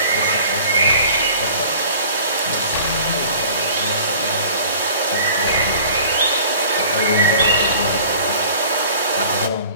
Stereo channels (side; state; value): both; inverted; correlation -0.47